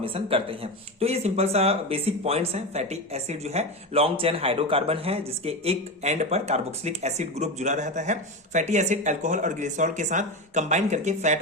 करते हैं। तो ये सिंपल सा बेसिक पॉइंट्स हैं। फैटी एसिड जो है लॉन्ग चेन हाइड्रोकार्बन है जिसके एक एंड पर कार्बोक्सिलिक एसिड ग्रुप जुड़ा रहता है। फैटी एसिड अल्कोहल और ग्लिसरॉल के साथ कंबाइन करके फैट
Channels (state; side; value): normal; both; correlation 0.19